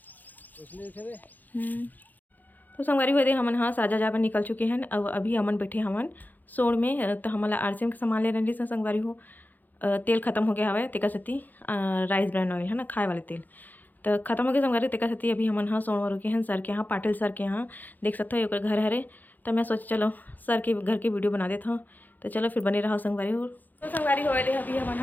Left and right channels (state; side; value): late; right; 0.084 ms